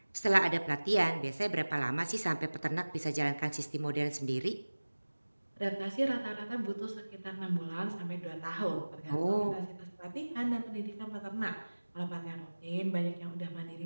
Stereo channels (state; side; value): inverted; both; correlation -1.00